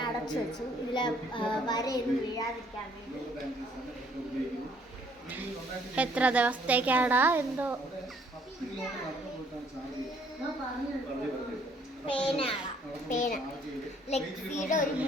അടച്ചു വെച്ചു. ഇതിൽ വരയൊന്നും വീഴാതിരിക്കാൻ വേണ്ടി. എത്ര ദിവസത്തേക്കാടാ എന്തോ. പേന ലെക്സിയുടെ ഒരു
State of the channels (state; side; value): normal; both; correlation 0.63